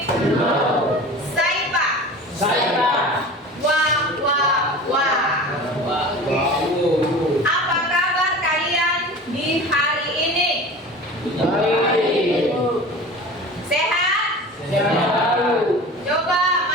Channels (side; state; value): both; normal; correlation 0.37